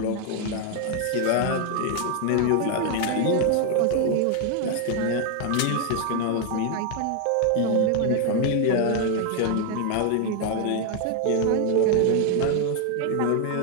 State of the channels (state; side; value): different; both; correlation 0.01